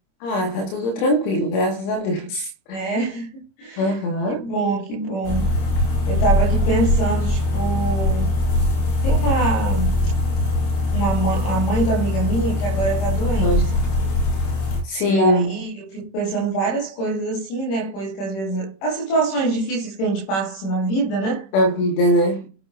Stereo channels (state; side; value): late; right; 26 ms